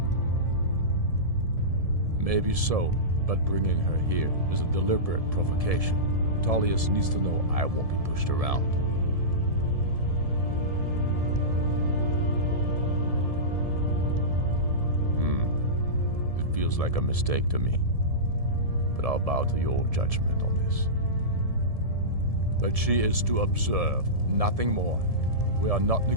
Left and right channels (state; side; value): late; left; 1.7 ms